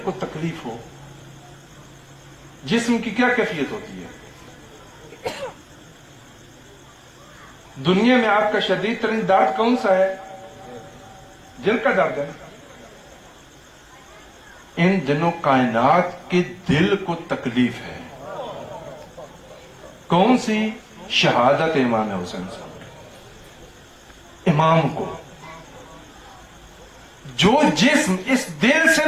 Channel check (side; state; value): both; identical; correlation 1.00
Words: تکلیف ہو، جسم کی کیا کیفیت ہوتی ہے؟ دنیا میں آپ کا شدید ترین درد کون سا ہے؟ دل کا درد ہے۔ ان دنوں کائنات کے دل کو تکلیف ہے۔ کون سی؟ شہادت امام حسین صاحب، امام کو۔ جو جسم اس دل سے